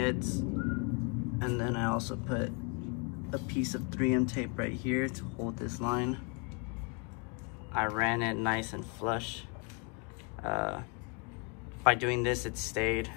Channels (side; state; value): right; quieter; 33.5 dB